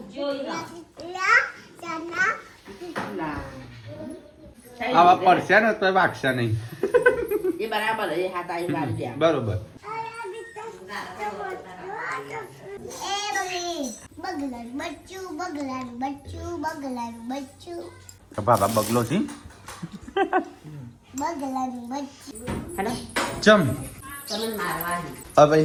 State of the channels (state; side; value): identical; both; correlation 1.00